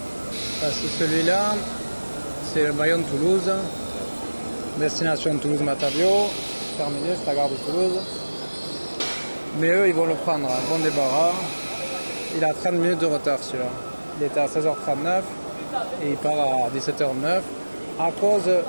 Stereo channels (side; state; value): both; inverted; correlation -1.00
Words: Parce que celui-là, c'est le Bayonne-Toulouse, destination Toulouse-Matavio, terminus, la gare de Toulouse. Mais eux, ils vont le prendre à bon débarras. Il a 30 minutes de retard celui-là. Il était à 16h39 et il part à 17h09 à cause